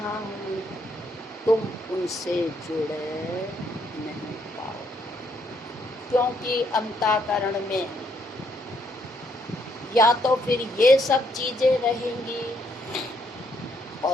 हूँ, तुम उनसे जुड़ नहीं पाओ, क्योंकि अंतःकरण में या तो फिर ये सब चीजें रहेंगी,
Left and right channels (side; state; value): both; normal; correlation 0.72